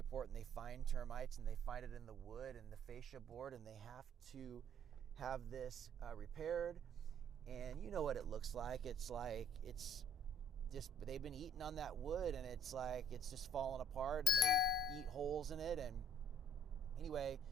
and they find termites and they find it in the wood and the fascia board, and they have to have this repaired. And you know what it looks like. It's just, they've been eating on that wood, and it's just falling apart, and they eat holes in it. And anyway,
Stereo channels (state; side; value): normal; both; correlation 0.61